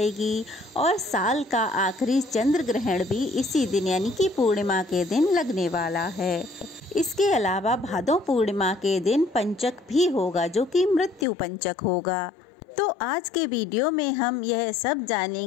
और साल का आखिरी चंद्र ग्रहण भी इसी दिन यानी कि पूर्णिमा के दिन लगने वाला है। इसके अलावा भादो पूर्णिमा के दिन पंचक भी होगा, जो कि मृत्यु पंचक होगा। तो आज के वीडियो में हम यह सब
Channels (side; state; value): right; drops out; at 11.2 s